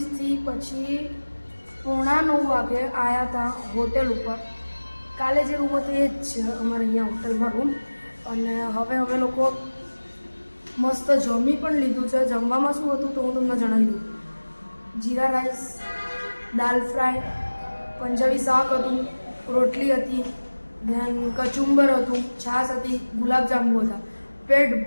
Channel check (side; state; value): both; inverted; correlation -1.00